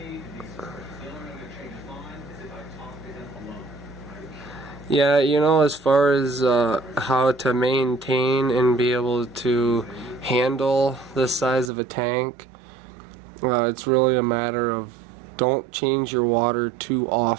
Yeah, you know, as far as how to maintain and be able to handle this size of a tank, it's really a matter of don't change your water too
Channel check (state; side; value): drops out; left; at 11.7 s